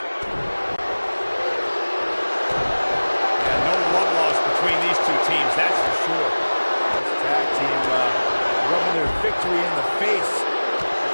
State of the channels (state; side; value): inverted; both; correlation -1.00